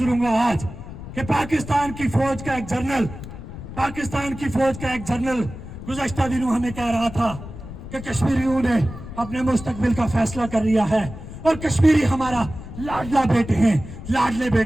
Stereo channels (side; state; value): left; noise; rumble, 12 dB below the sound